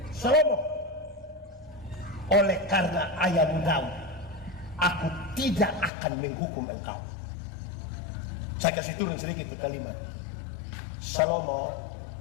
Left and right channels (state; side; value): drops out; right; at 5.9 s